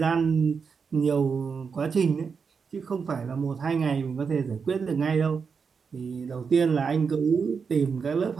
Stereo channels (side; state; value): left; quieter; 5.7 dB